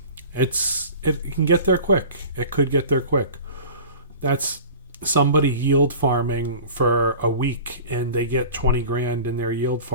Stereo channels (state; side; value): inverted; both; correlation -0.40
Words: it can get there quick. It could get there quick. That's somebody yield farming for a week and they get $20,000 in their yield